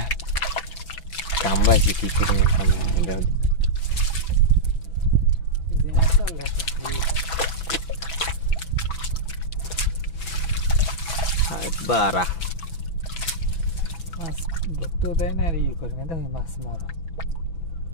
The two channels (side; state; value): right; late; 6.0 ms